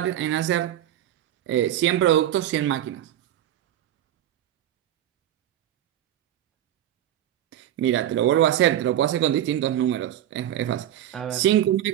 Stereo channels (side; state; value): left; quieter; 11.9 dB